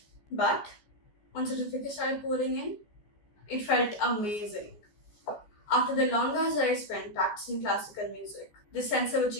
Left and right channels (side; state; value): right; late; 14 ms